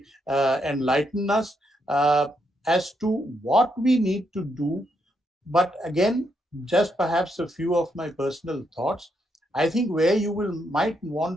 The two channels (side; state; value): both; normal; correlation 0.78